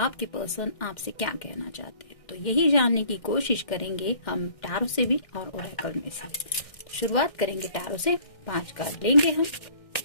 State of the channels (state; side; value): late; right; 1.6 ms